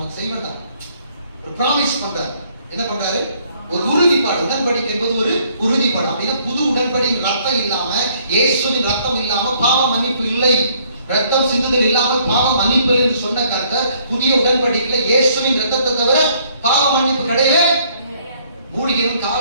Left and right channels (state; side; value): inverted; both; correlation -0.65